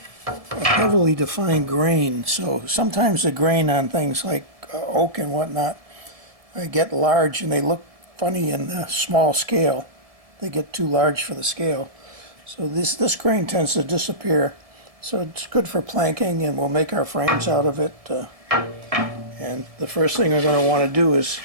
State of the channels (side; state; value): left; late; 1.7 ms